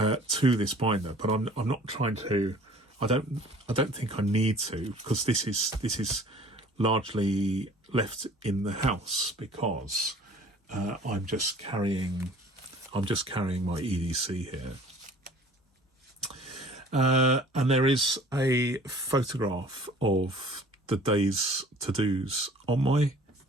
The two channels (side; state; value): both; normal; correlation 0.49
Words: this binder, but I'm not trying to. I don't think I need to, because this is largely left in the house because I'm just carrying my EDC here. And there is a photograph of the day's to-dos on my